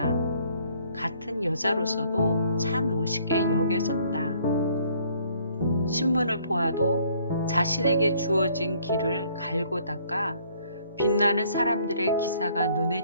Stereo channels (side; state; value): both; inverted; correlation -0.62